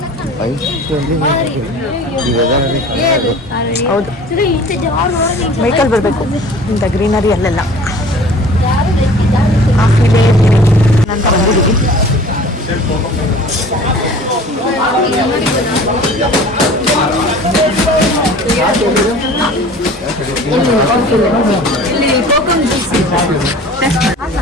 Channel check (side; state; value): both; normal; correlation 0.45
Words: ಹೌದು, ಬೈಕಲ್ಲಿ ಬರಬೇಕು. ಇಂಥ ಗ್ರೀನರಿ ಅಲ್ಲೆಲ್ಲ ಆಫಿಲೇ ಅಂತ ಬಂದಿದ್ದೀವಿ.